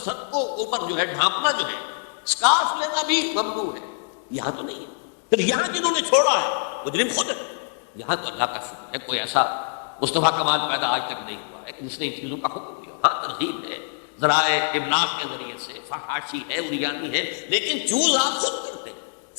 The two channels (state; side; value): silent; right; digital silence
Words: کو اوپر جو ہے ڈھانپنا جو ہے، اسکارف لینا بھی ممنوع ہے، یہاں تو نہیں ہے. پھر یہاں جنہوں نے چھوڑا ہے مجرم خود ہے. یہاں تو اللہ کا شکر ہے کوئی ایسا مصطفیٰ کمال پیدا آج تک نہیں ہوا ہے کہ جس نے ان چیزوں کا حکم دیا. ہاں ترغیب ہے، ذرائع ابلاغ کے ذریعے سے، فحاشی ہے، اریانی ہے، لیکن چوز آپ خود کرتے ہیں،